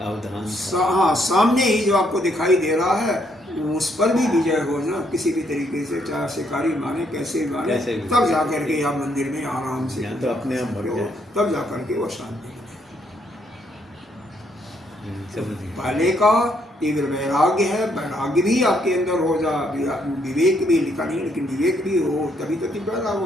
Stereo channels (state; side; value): normal; both; correlation 0.72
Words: हाँ सामने ही जो आपको दिखाई दे रहा है, उस पर भी विजय हो ना किसी भी तरीके से, चाहे शिकारी माने कैसे माने, तब जा करके आप मंदिर में आराम से तो अपने आप तब जा करके वो शांति। पहले का तीव्र वैराग्य है, वैराग्य भी आपके अंदर हो जा, विवेक भी लिखा नहीं, लेकिन विवेक भी हो तभी तो तीव्र वैराग्य